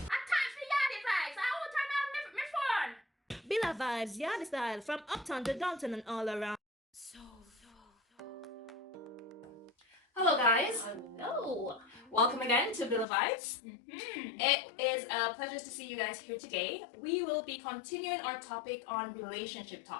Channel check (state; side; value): drops out; right; at 13.1 s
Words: yardy vibes. I will turn on my phone. Billa vibes, yard style from uptown to downtown and all around. Hello guys, Hello. welcome again to Villa Vibes. It is a pleasure to see you guys here today. We will be continuing our topic on relationship